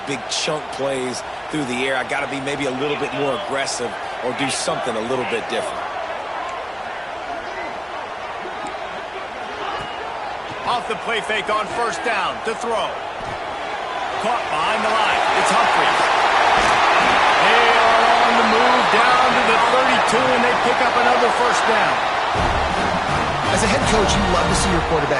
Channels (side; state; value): both; identical; correlation 1.00